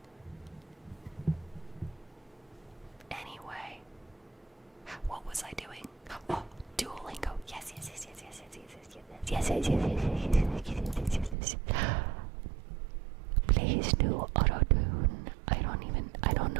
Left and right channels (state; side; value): drops out; left; at 11.4 s